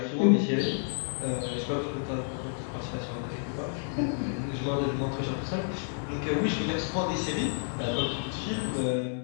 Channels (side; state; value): right; silent; 58 dB below the other